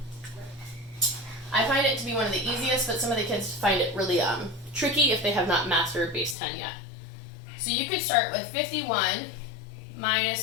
I find it to be one of the easiest, but some of the kids find it really tricky if they have not mastered base 10 yet. So you could start with 51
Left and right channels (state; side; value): drops out; right; at 6.4 s